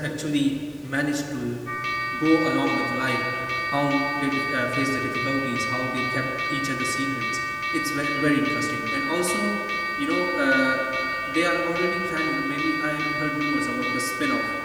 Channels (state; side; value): identical; both; correlation 1.00